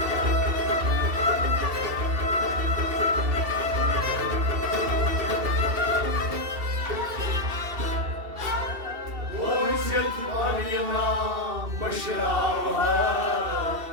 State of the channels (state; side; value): late; left; 2.7 ms